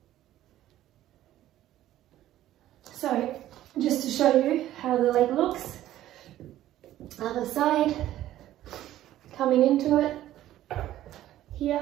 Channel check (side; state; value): left; quieter; 13.5 dB